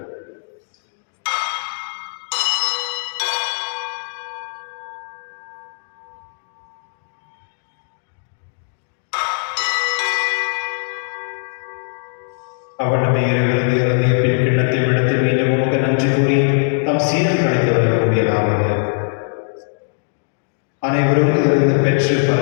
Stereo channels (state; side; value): silent; right; digital silence